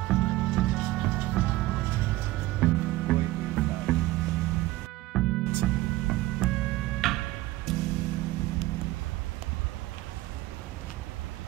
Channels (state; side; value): quieter; left; 17.7 dB